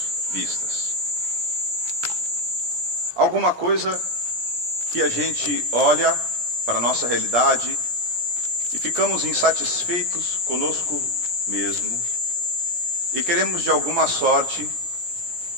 vistas. Alguma coisa que a gente olha para a nossa realidade e ficamos insatisfeitos conosco mesmo e queremos de alguma sorte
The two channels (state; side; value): late; left; 17 ms